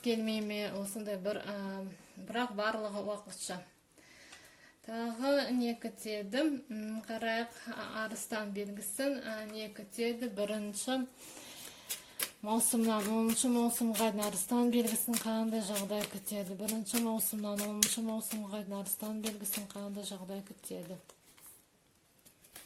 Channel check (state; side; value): identical; both; correlation 1.00